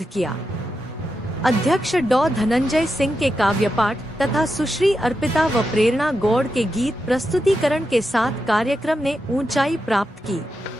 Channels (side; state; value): both; normal; correlation 0.87